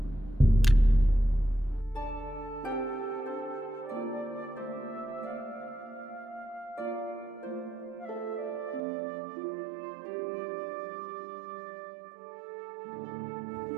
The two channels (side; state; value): left; drops out; at 8.8 s